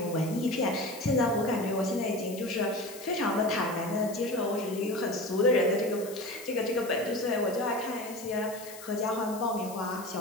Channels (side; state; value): left; noise; hiss, 15 dB below the sound